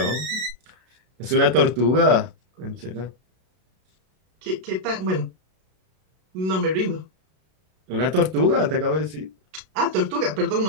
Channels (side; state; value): left; late; 32 ms